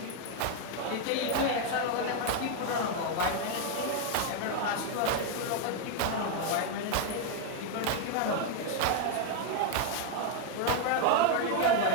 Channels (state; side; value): different; both; correlation 0.00